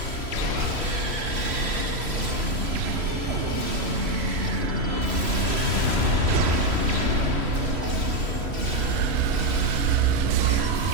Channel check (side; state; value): left; late; 3.1 ms